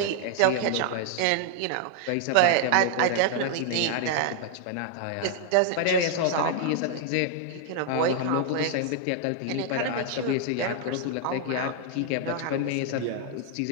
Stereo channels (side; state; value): both; different; correlation 0.00